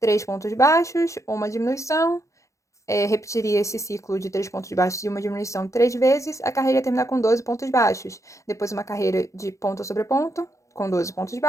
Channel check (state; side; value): late; right; 0.15 ms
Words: pontos baixos, uma diminuição, repetiria esse ciclo de 3 pontos baixos e uma diminuição 3 vezes, a carreira ia terminar com 12 pontos baixos. Depois uma carreira de ponto sobre ponto, com 12 pontos